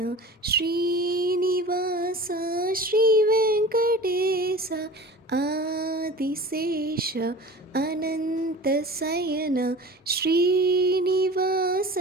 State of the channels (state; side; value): normal; both; correlation 0.37